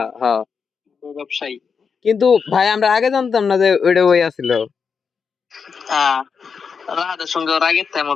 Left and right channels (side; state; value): right; quieter; 5.9 dB